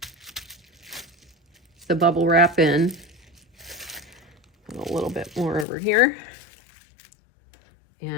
the bubble wrap in. Put a little bit more over here.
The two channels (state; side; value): drops out; right; at 5.7 s